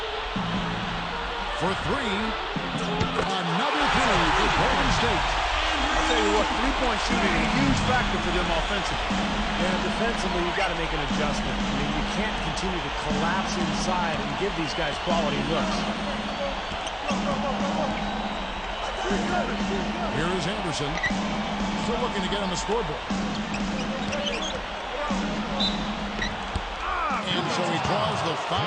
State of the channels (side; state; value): both; identical; correlation 1.00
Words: For 3. Another three for Golden State. I'll tell you what, three-point shooting is a huge factor for them offensively. Yeah, defensively, you've got to make an adjustment. I mean, you can't continue to collapse inside and give these guys quality looks. Here is Anderson. Still looking to get on the scoreboard. And so he draws the